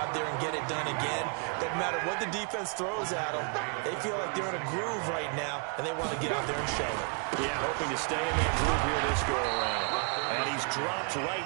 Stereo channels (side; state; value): left; quieter; 37.6 dB